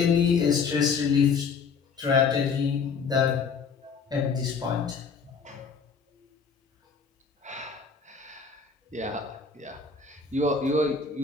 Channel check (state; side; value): quieter; right; 5.5 dB